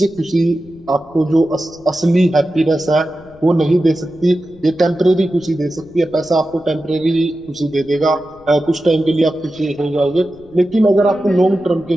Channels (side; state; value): left; noise; rumble, 25 dB below the sound